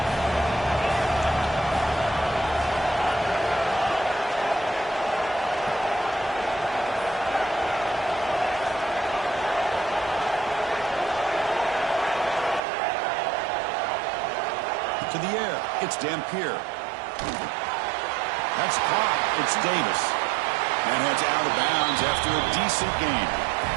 To the air, it's Dampier. That's caught. It's Davis. And heads out of bounds after a decent gain.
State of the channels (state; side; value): drops out; left; at 12.6 s